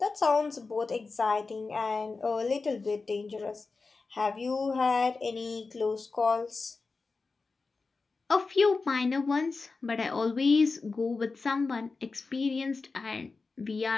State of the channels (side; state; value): right; quieter; 4.1 dB